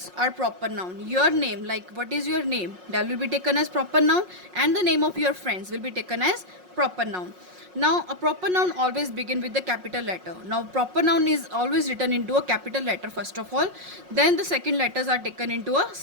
are proper noun. Your name, like what is your name, that will be taken as proper noun, and the name of your friends will be taken as proper noun. Now a proper noun always begin with the capital letter. Now proper noun is always written into a capital letter first of all, then the second letters are taken into a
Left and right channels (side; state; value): left; late; 5.5 ms